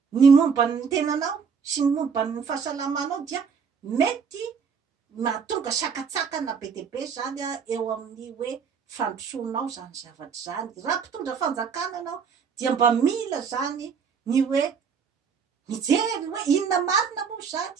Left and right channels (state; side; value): quieter; left; 6.2 dB